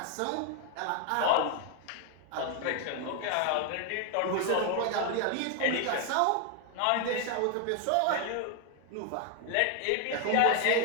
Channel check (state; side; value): different; both; correlation 0.01